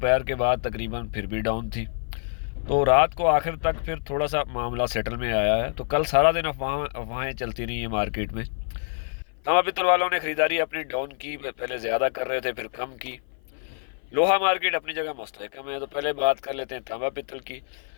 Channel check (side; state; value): right; silent; 55 dB below the other